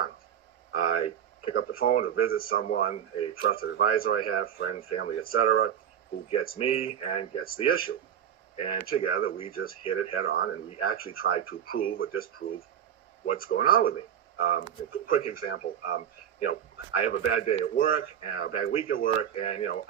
I pick up the phone to visit someone, a trusted advisor I have, friend, family, etc., who gets me and gets the issue. And together we just hit it head on, and we actually try to prove or disprove what's going on with me. A quick example, I have a bad day at work, and a bad week at work, and,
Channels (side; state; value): left; quieter; 9.2 dB